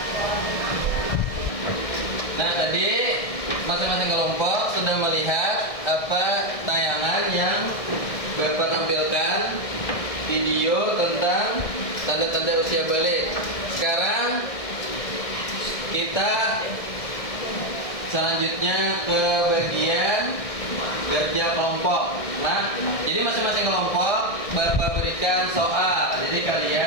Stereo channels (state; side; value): late; right; 1.6 ms